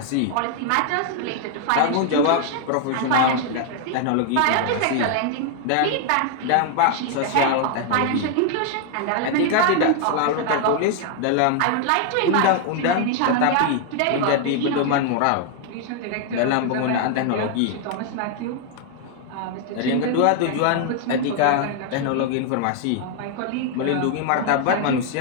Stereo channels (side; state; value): both; different; correlation 0.00